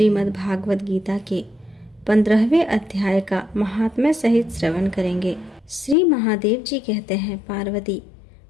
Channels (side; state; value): right; drops out; at 6.0 s